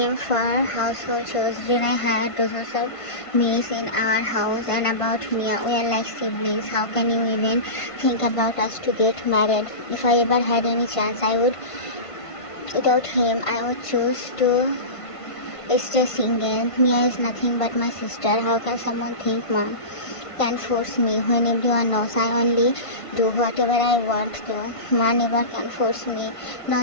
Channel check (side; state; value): right; late; 1.5 ms